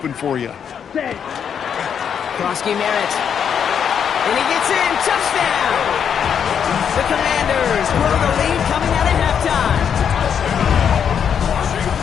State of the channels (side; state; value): right; quieter; 7.8 dB